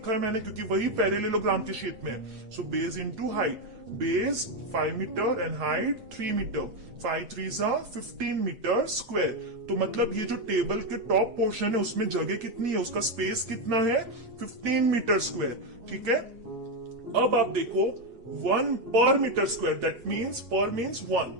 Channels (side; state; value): left; late; 8.1 ms